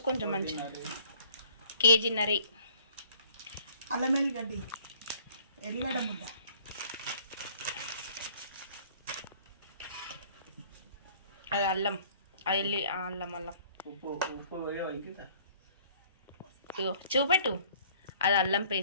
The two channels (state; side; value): inverted; both; correlation -0.57